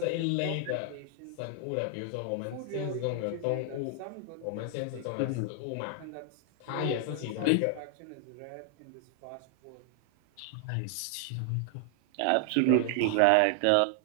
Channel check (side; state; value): both; different; correlation 0.00